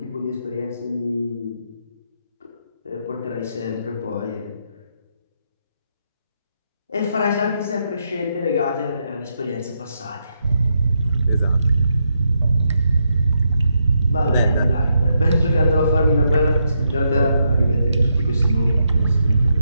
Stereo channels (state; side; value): inverted; both; correlation -0.80